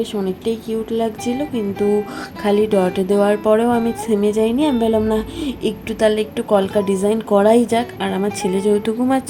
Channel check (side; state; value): both; identical; correlation 1.00